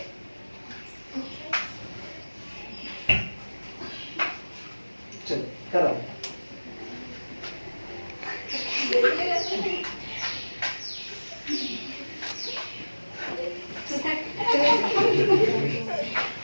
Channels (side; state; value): both; inverted; correlation -1.00